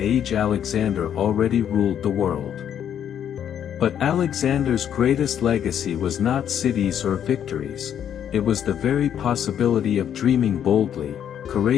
Alexander already ruled the world. But Alexander's greatest legacy was not cities or victories, it was the very possibility of dreaming boldly,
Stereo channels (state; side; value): quieter; right; 9.4 dB